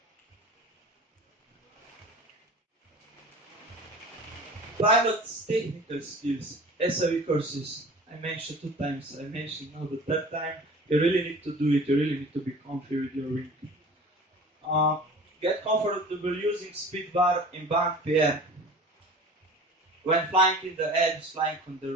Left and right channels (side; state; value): both; normal; correlation 0.41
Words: pilot's technical skills, SAV courses, I mentioned 2 times, I mentioned now the 3rd time, you really need to do it, you really need to be comfy with your wing. Get comfortable using speed bar in bank PR. When flying in the edge, flying on the